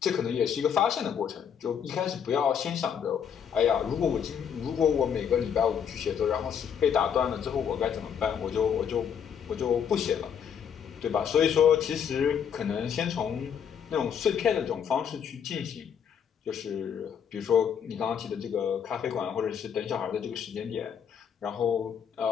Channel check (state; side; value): quieter; right; 7.9 dB